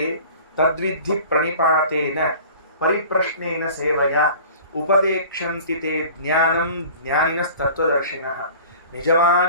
ತದ್ವಿಧಿ ಪ್ರಣಿಪಾತೇನ ಪರಿಪ್ರಶ್ನೇನ ಸೇವಯ ಉಪದೇಕ್ಷಂತಿತೆ ಜ್ಞಾನಂ ಜ್ಞಾನಿನ ತತ್ವದರ್ಶಿನಃ.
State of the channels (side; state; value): both; inverted; correlation -0.44